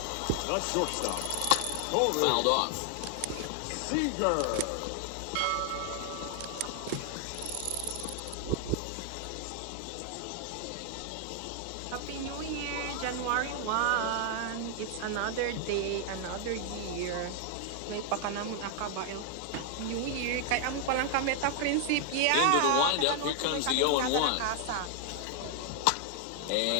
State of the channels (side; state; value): both; different; correlation 0.00